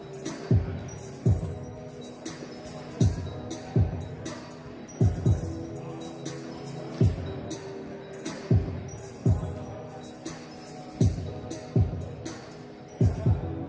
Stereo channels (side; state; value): both; identical; correlation 1.00